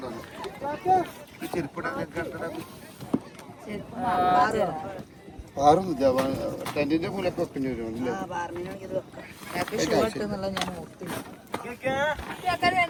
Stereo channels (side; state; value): both; identical; correlation 1.00